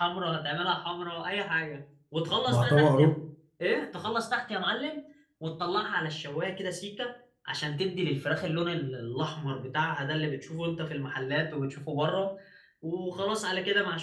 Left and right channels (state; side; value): identical; both; correlation 1.00